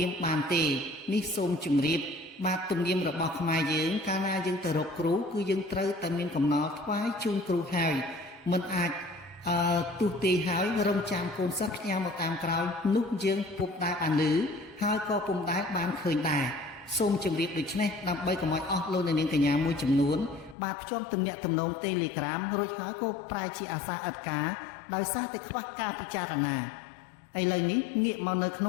ៀមបានទេនេះសូមជម្រាបបាទទំនៀមរបស់ខ្មែរយើងកាលណាយើងទៅរកគ្រូគឺយើងត្រូវតែមានកំណល់ថ្វាយជូនគ្រូហើយមិនអាចទូទាយហើយរងចាំកូនសិស្សផ្ញើមកតាមក្រោយនោះយើងពុំដែលបានឮហើយក៏ពុំដែលបានឃើញដែរសូមជម្រាបដូច្នេះដើម្បីកុំឲ្យអស់លោកអ្នកនាងកញ្ញាមួយចំនួនបាទភ្ជាប់ទំនាក់ទំនង Telegram រួចហើយក៏ប្រែជាអាសាឥតការដោយសារតែខ្វះការពិចារណាឥឡូវនេះងាកមកនៅក្ន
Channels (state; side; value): drops out; right; at 20.6 s